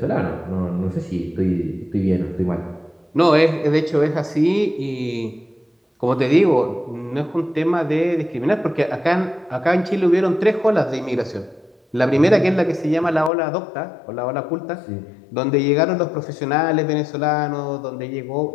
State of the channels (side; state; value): right; drops out; at 13.3 s